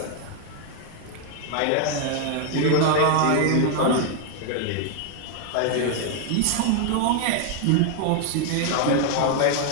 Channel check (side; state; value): both; different; correlation 0.00